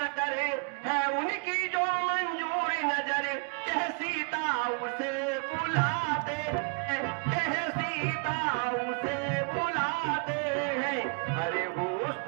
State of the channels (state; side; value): quieter; left; 37.2 dB